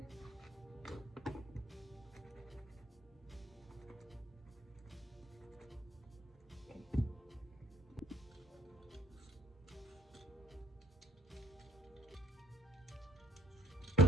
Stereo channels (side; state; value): both; normal; correlation 0.61